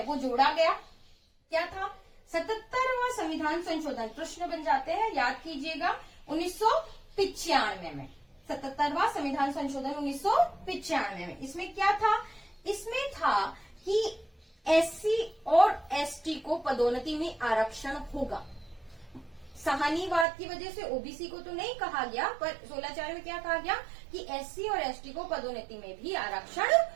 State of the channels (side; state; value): left; drops out; at 20.2 s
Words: वो जोड़ा गया। क्या था? 77वां संविधान संशोधन। प्रश्न बन जाते हैं, याद कीजिएगा, 1995 में 77वां संविधान संशोधन 1995 में। इसमें क्या था? इसमें था कि एससी और एसटी को पदोन्नति में आरक्षण होगा। सहानीवाद की वजह से ओबीसी को तो नहीं कहा गया, पर 16(4) में क्या कहा गया कि एससी और एसटी को पदोन्नति में भी आरक्षण